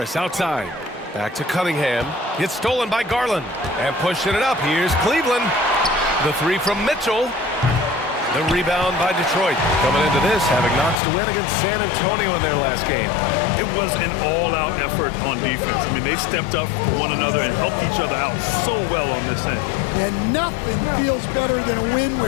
outside. Back to Cunningham. It's stolen by Garland. And pushing it up, here's Cleveland. The 3 from Mitchell. The rebound by Detroit. Coming into this, having notched a win against San Antonio in their last game. It was an all-out effort on defense. I mean, they stepped up for one another and helped each other out so well on this end. And nothing feels better than a win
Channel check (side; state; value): right; drops out; at 11.0 s